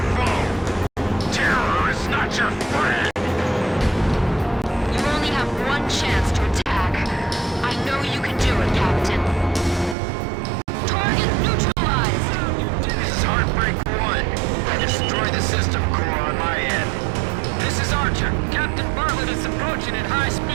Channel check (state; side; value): drops out; left; at 10.0 s